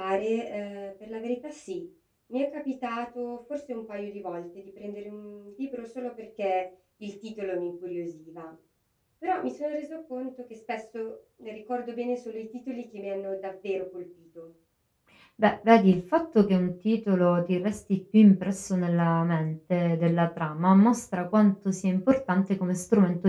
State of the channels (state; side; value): identical; both; correlation 1.00